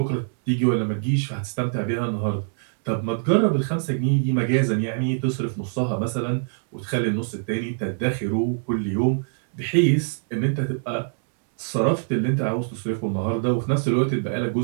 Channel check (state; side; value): silent; left; digital silence